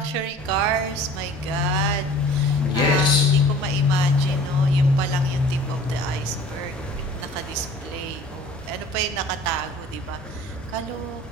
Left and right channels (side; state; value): both; normal; correlation 0.47